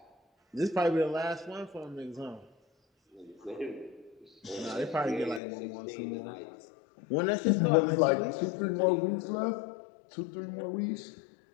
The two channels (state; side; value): drops out; right; at 5.4 s